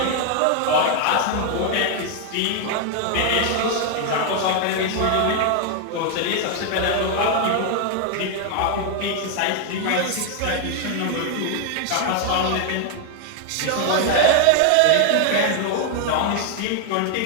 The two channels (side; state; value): both; different; correlation 0.00